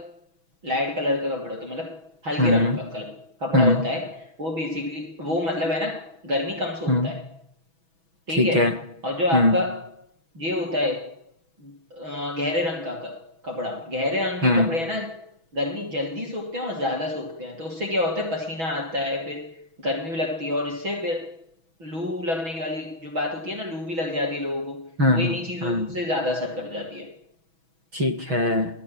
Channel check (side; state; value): left; late; 6.1 ms